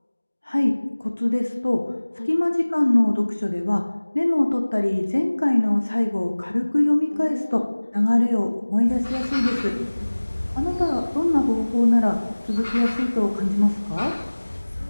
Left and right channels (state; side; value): inverted; both; correlation -1.00